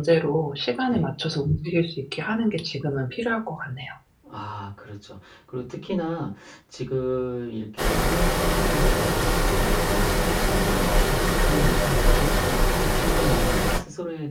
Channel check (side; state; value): both; identical; correlation 1.00